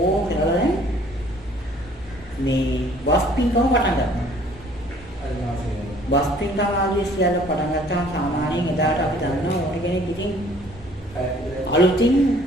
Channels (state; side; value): normal; both; correlation 0.56